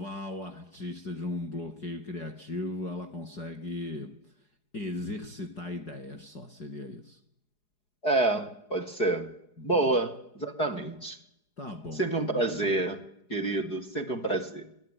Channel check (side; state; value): right; late; 4.8 ms